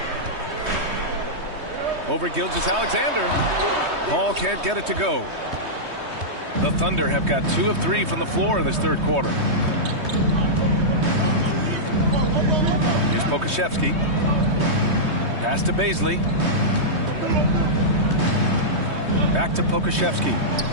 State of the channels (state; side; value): late; left; 3.2 ms